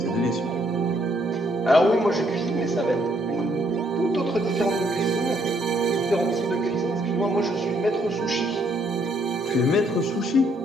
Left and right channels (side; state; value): both; normal; correlation 0.70